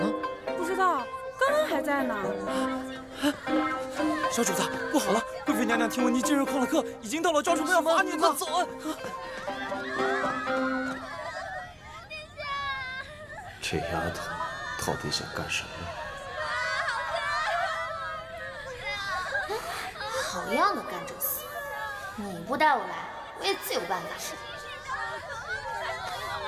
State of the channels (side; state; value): both; identical; correlation 1.00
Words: 不知道，刚刚还在呢。小主子，不好了！贵妃娘娘听闻你今日旷了课，已经到了招出门要罚你呢。走啊！这丫头到底想干什么？好样的，甘蔗丝！你不带我来，我也自有办法。